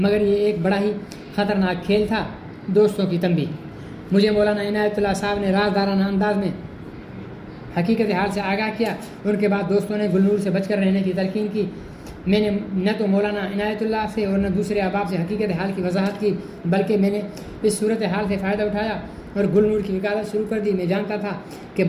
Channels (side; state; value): both; identical; correlation 1.00